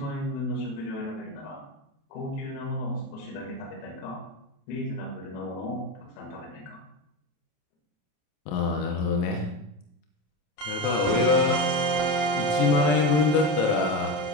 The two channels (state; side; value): late; right; 27 ms